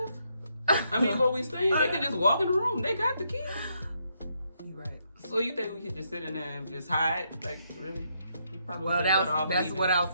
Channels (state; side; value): inverted; both; correlation -0.76